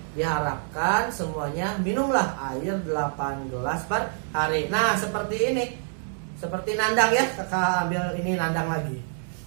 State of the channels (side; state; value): left; silent; digital silence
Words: diharapkan semuanya minumlah air 8 gelas per hari. Nah, seperti ini. Seperti Nandang ya, kakak ambil ini Nandang lagi.